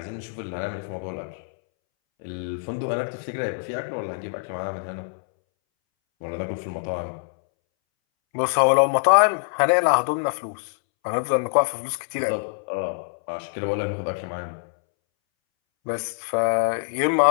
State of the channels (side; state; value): right; silent; 62 dB below the other